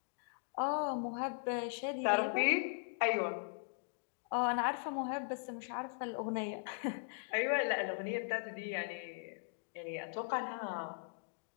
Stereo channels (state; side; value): silent; right; digital silence